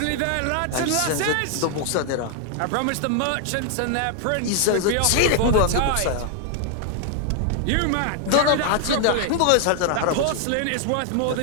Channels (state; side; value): different; both; correlation 0.00